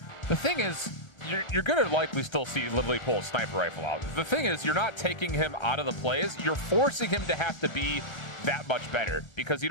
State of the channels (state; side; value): late; right; 1.4 ms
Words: The thing is, you're going to likely still see Lively pull a sniper rifle out. The thing is, you're not taking him out of the plays. You're forcing him to have to be that much better because you